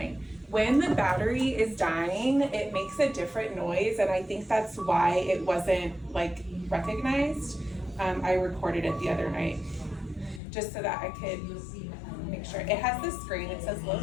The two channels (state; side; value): drops out; right; at 10.4 s